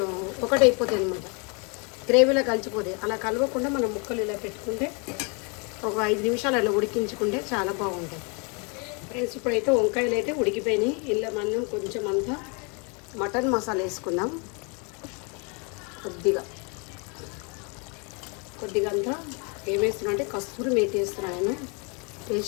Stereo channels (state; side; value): quieter; right; 33.6 dB